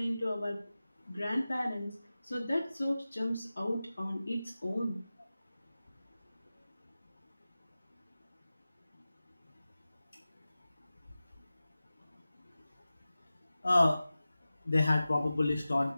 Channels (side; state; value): both; inverted; correlation -0.96